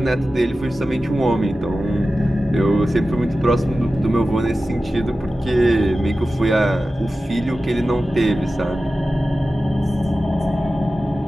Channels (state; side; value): normal; both; correlation 0.94